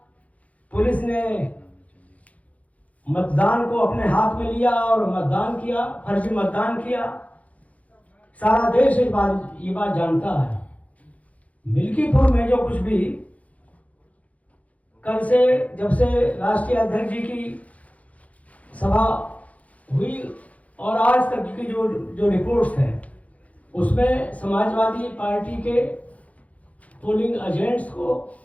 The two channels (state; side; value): late; right; 0.068 ms